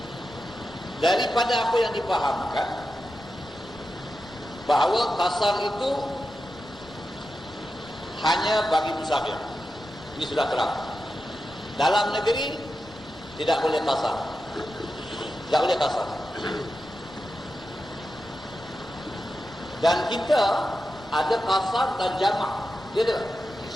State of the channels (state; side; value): normal; both; correlation 0.90